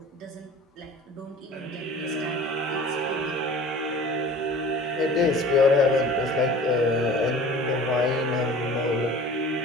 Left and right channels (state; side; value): normal; both; correlation 0.43